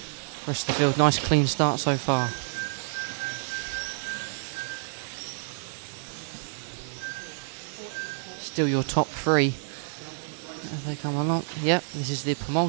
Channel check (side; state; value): left; silent; digital silence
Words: Rest of the field, nice clean start so far. Still your top three as they come along. Yep, this is the